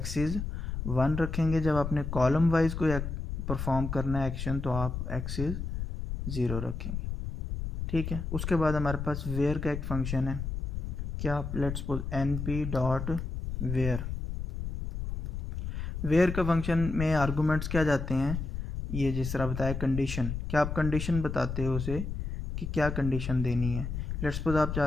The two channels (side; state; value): left; noise; rumble, 4 dB below the sound